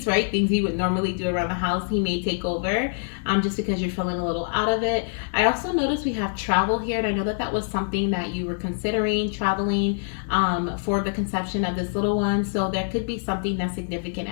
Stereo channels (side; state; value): right; silent; 56 dB below the other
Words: right? Things you would normally do around the house, he may take over just because you're feeling a little out of it. I also noticed we have travel here, and I know that that was something that you were considering, traveling for the conception of this little one. So there could be something that's significant